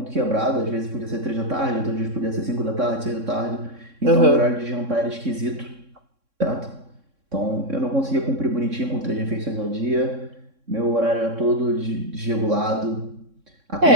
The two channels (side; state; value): left; late; 3.6 ms